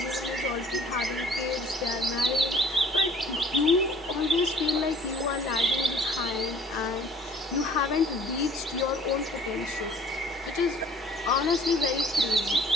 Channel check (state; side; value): normal; both; correlation 0.52